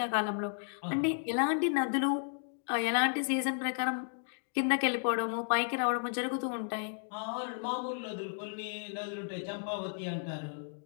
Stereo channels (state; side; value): silent; right; digital silence